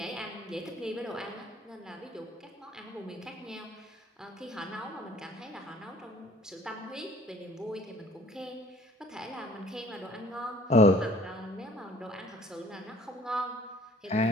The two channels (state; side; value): normal; both; correlation 0.53